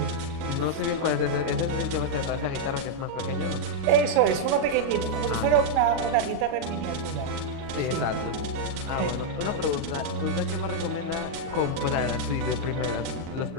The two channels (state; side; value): late; left; 37 ms